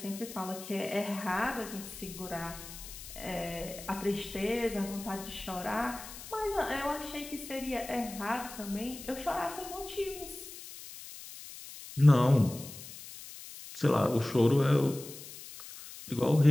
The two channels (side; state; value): left; noise; hiss, 13 dB below the sound